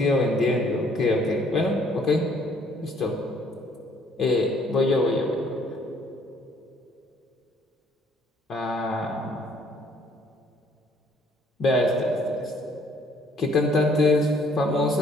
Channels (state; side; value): normal; both; correlation 0.63